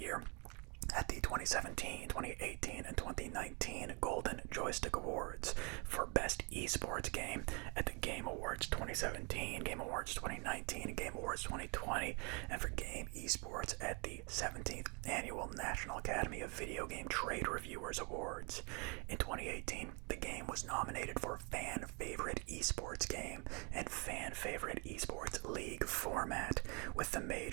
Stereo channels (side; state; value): left; quieter; 32.7 dB